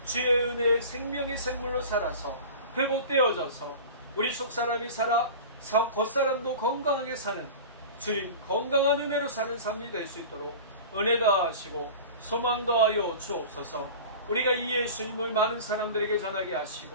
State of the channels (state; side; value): inverted; both; correlation -0.36